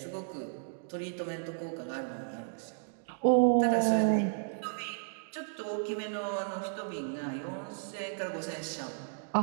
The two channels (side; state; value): left; silent; digital silence